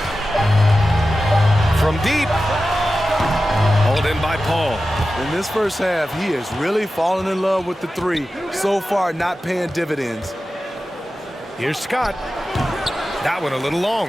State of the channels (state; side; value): normal; both; correlation 0.93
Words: From deep. Hauled in by Paul. In this first half, he has really fallen in love with the three. So far, not paying dividends. Here's Scott. That one a little